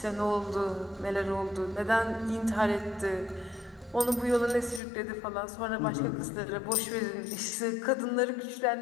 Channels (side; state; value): right; drops out; at 4.8 s